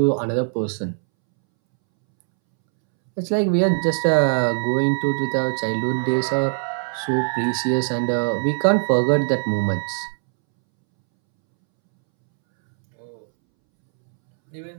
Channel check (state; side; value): silent; left; 65 dB below the other